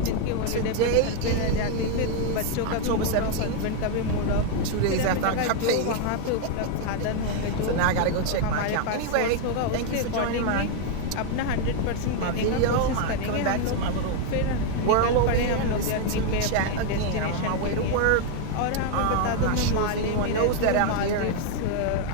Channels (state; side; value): different; both; correlation 0.01